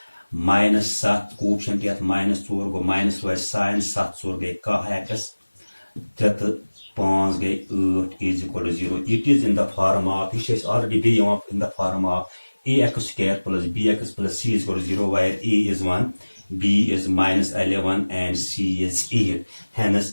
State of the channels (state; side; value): inverted; both; correlation -1.00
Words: -7 कोएफिशिएंट यत -4 गो माइनस रोज साइन 7 4 गई x 3 5 गई 8 is equal to 0. It is in the form of, this is already be in the form of ax square plus bx plus c is equal to 0, where a is 1, b is -11 and c is 8. Hence